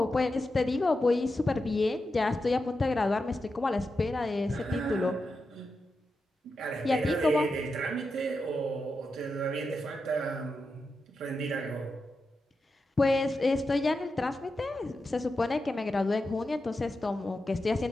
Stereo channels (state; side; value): normal; both; correlation 0.89